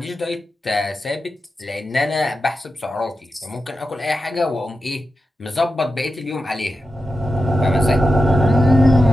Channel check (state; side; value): normal; both; correlation 0.90